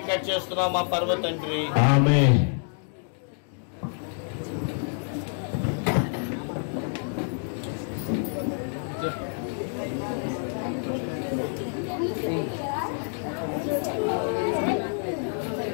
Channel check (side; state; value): right; silent; 60 dB below the other